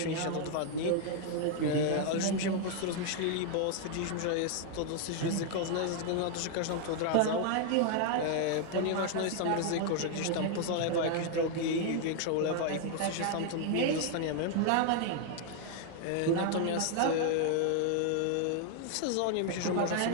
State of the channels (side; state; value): both; different; correlation 0.00